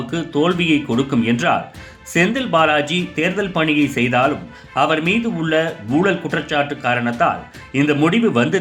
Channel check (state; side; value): identical; both; correlation 1.00